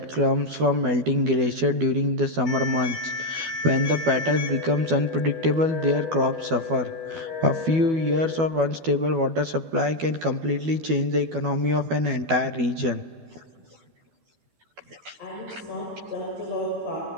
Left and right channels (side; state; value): left; late; 12 ms